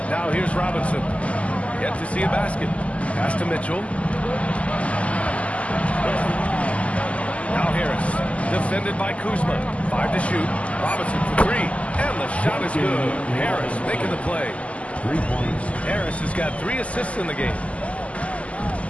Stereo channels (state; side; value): late; right; 0.065 ms